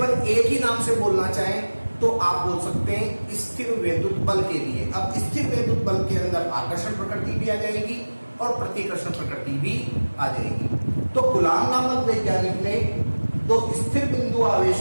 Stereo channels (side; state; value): both; inverted; correlation -1.00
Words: एक ही नाम से बोलना चाहें तो आप बोल सकते हैं स्थिर वैद्युत बल के लिए। अब स्थिर वैद्युत बल के अंदर आकर्षण प्रकृति भी आ जाएगी और प्रतिकर्षण प्रकृति भी आ जाएगी। तो कूलॉम नामक वैज्ञानिक ने दो स्थिर बिंदु